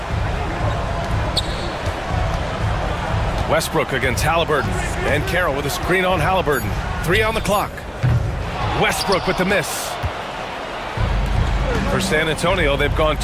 Westbrook against Halliburton. And Carroll with a screen on Halliburton. 3 on the clock. Westbrook with the miss. For San Antonio, they've gone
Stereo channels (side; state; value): both; identical; correlation 1.00